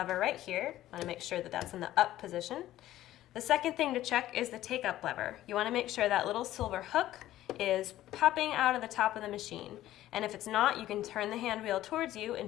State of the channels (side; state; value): right; quieter; 14.1 dB